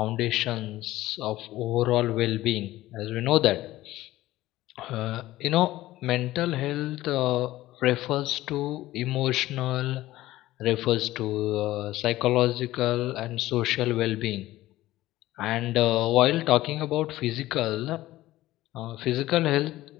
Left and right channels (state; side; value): quieter; right; 16.2 dB